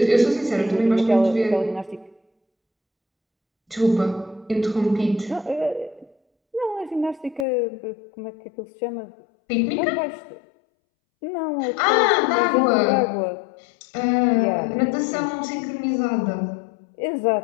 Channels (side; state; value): right; drops out; at 7.5 s